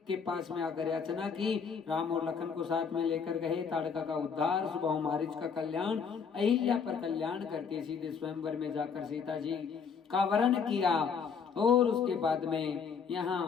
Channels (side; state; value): right; quieter; 6.2 dB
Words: के पास में आकर याचना की, राम और लखन को साथ में लेकर गए, ताड़का का उद्धार, सुबह मारीच का कल्याण, अहिल्या पर कल्याण करके सीधे स्वयंवर में जाकर सीता जी का वरण किया। और उसके बाद में यहाँ